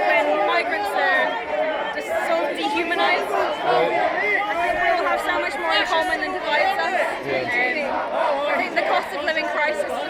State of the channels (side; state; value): both; identical; correlation 1.00